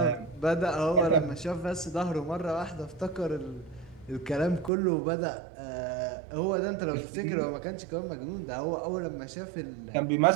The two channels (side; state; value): left; drops out; at 4.7 s